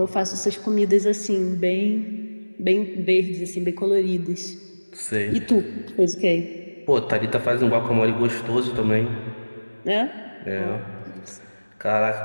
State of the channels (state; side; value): inverted; both; correlation -1.00